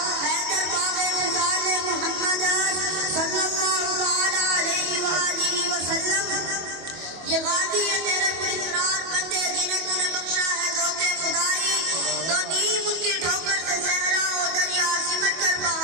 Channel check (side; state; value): left; late; 25 ms